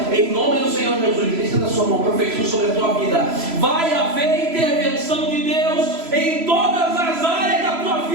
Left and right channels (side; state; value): left; late; 3.0 ms